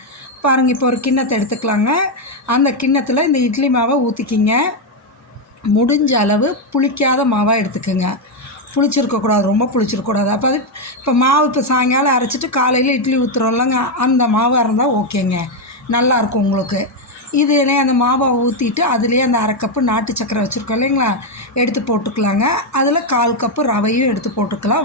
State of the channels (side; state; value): both; normal; correlation 0.04